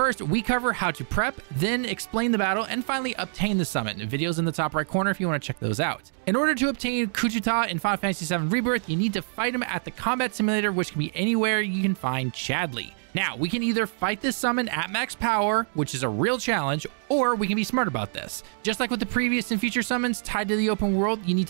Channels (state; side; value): silent; left; digital silence